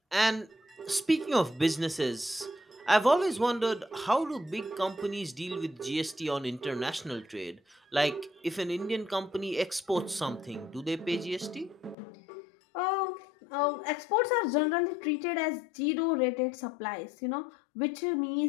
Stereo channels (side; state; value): right; drops out; at 12.0 s